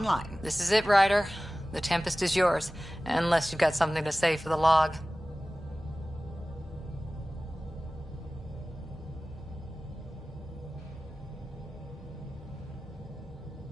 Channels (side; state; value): both; normal; correlation 0.97